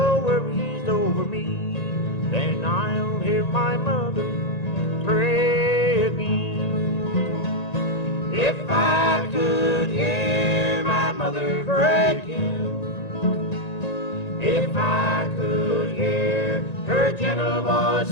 worries over me, then I'll hear my mother pray again. If I could hear my mother pray again, if I could hear her gentle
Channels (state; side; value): late; right; 1.9 ms